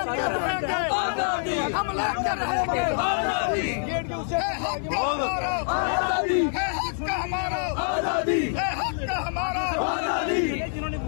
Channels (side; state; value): right; silent; digital silence